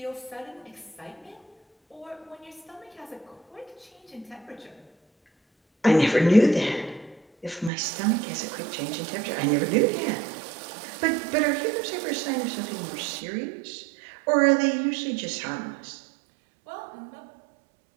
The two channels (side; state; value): left; drops out; at 7.7 s